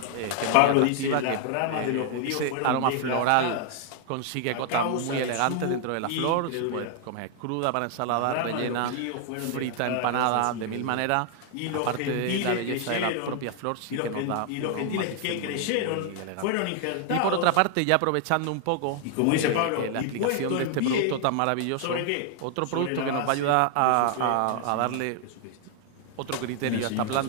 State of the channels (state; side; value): different; both; correlation 0.00